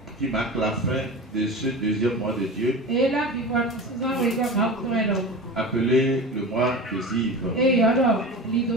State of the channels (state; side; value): normal; both; correlation 0.30